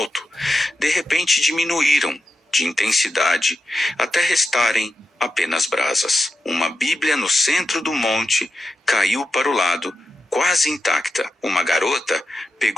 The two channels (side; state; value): both; normal; correlation 0.89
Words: de repente diminuíram de intensidade até restarem apenas brasas. Uma Bíblia no centro do monte caiu para o lado, quase intacta. Uma garota